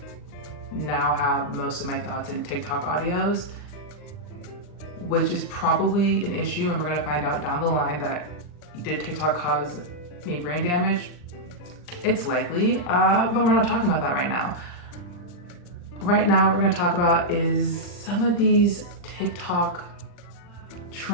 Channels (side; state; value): right; late; 40 ms